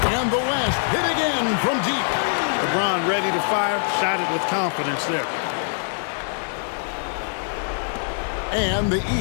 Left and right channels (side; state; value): right; silent; 62 dB below the other